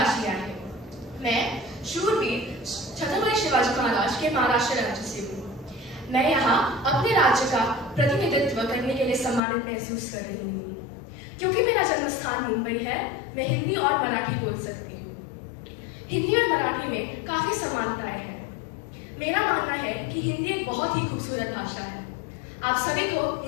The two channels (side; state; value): right; drops out; at 9.4 s